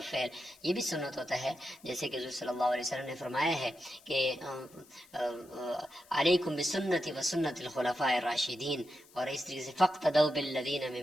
فعل یہ بھی سنت ہوتا ہے، جیسے کہ حضور صلی اللہ علیہ وسلم نے فرمایا ہے کہ علیکم بسنتی و سنت الخلفاء الراشدین، اور اس طریقے سے فاقتدوا بالذین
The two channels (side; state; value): left; noise; hiss, 26 dB below the sound